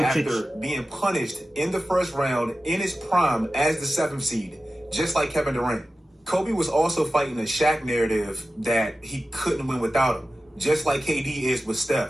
after being punished in the first round in his prime as the 7th seed, just like Kevin Durant. Kobe was also fighting a Shaq narrative that he couldn't win without him, just like KD is with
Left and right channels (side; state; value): both; normal; correlation 0.94